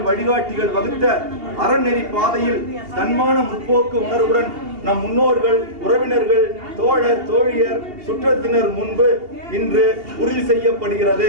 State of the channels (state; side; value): late; left; 2.8 ms